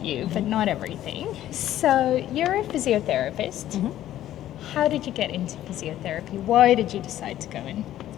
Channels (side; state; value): right; quieter; 12.8 dB